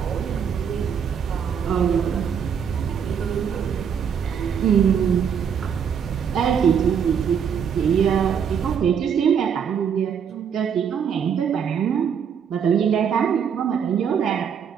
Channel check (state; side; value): quieter; left; 7.5 dB